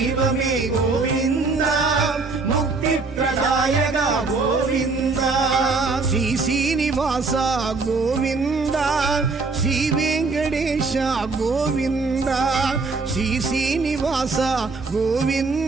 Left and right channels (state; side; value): quieter; left; 4.0 dB